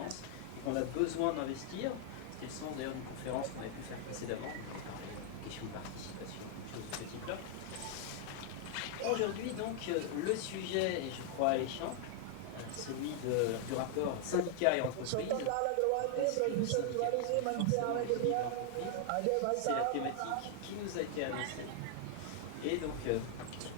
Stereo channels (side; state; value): both; different; correlation 0.00